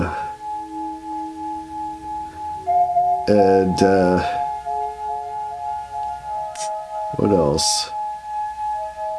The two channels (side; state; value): both; identical; correlation 1.00